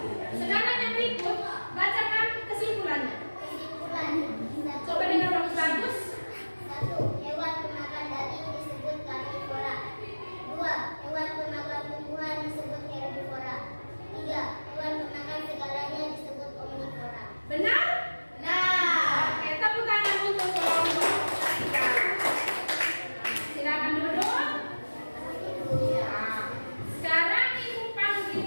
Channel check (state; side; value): inverted; both; correlation -1.00